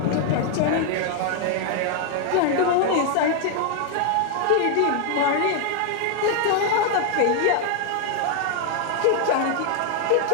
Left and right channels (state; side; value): different; both; correlation 0.00